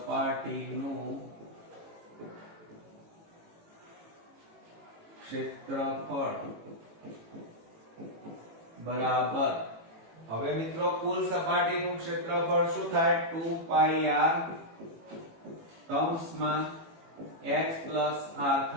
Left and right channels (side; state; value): left; late; 18 ms